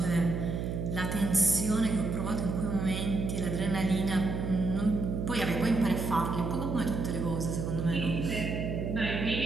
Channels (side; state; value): right; noise; hum, 3 dB below the sound